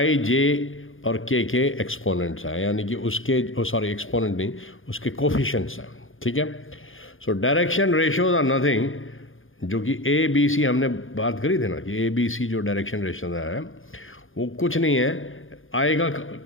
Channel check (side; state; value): right; late; 0.59 ms